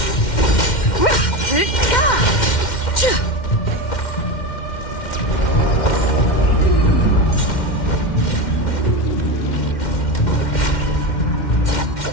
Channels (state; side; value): late; right; 2.1 ms